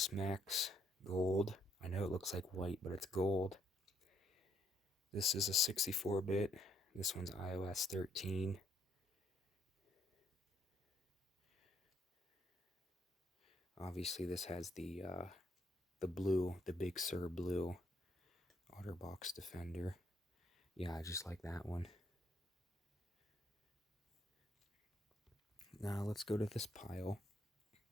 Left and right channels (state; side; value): normal; both; correlation 0.70